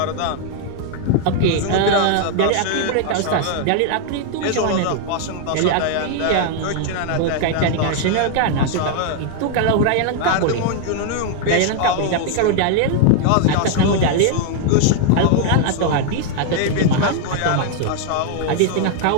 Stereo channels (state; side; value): different; both; correlation 0.00